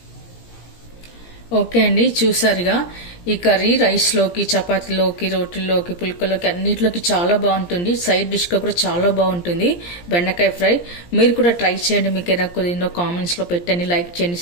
ఓకే అండి, చూసారుగా ఈ కర్రీ రైస్లోకి, చపాతీలోకి, రోటీల్లోకి, పుల్కలోకి అన్నిటిలోకి చాలా బాగుంటుంది. సైడ్ డిష్గా కూడా చాలా బాగుంటుంది బెండకాయ ఫ్రై. మీరు కూడా ట్రై చేయండి. మీకు ఏదైనా కుదిరిందో కామెంట్స్లో పెట్టండి, లైక్ చేయండి,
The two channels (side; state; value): right; late; 17 ms